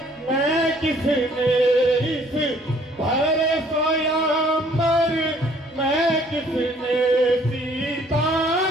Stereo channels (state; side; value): normal; both; correlation 0.59